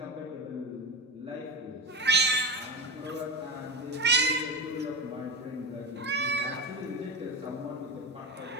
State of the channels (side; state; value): both; normal; correlation 0.21